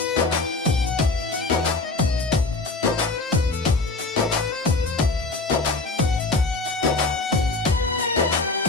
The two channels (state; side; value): quieter; right; 3.5 dB